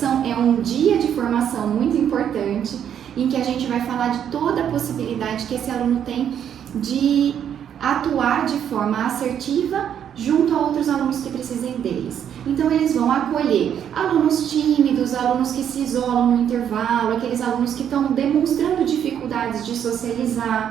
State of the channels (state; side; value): quieter; left; 9.1 dB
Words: é um dia de formação muito importante, em que a gente vai falar de toda a possibilidade que esse aluno tem de atuar de forma assertiva junto a outros alunos que precisem deles. Então eles vão acolher alunos tímidos, alunos que se isolam no intervalo, aqueles alunos que estão demonstrando dificuldades de